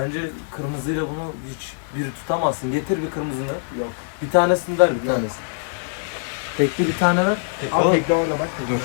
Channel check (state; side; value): silent; right; digital silence